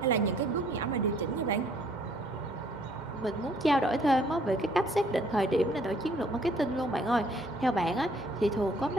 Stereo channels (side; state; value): both; normal; correlation 0.62